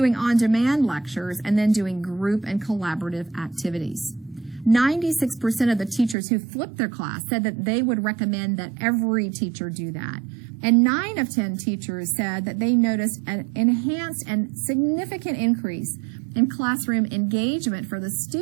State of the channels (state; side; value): drops out; left; at 6.2 s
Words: on-demand lectures and then doing group and collaborative activities. 96% of the teachers who flipped their class said that they would recommend that every teacher do that. And 9 of 10 teachers said that they noticed an enhanced and significant increase in classroom engagement for the